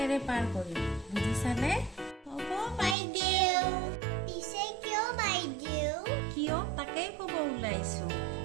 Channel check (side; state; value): left; drops out; at 3.0 s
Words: পাৰ কৰিম বুজিছানে হ'ব বাইদেউ পিছে কিয় বাইদেউ কিয় তাকেই ক'ব ওলাইছো